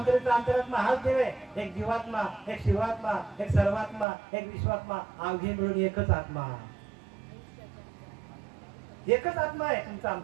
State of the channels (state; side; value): drops out; left; at 4.0 s